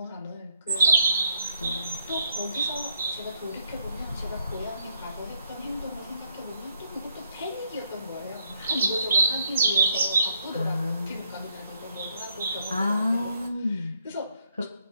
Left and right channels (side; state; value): both; inverted; correlation -0.73